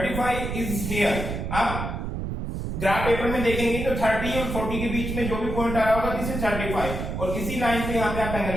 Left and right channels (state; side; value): noise; right; rumble, 4 dB below the sound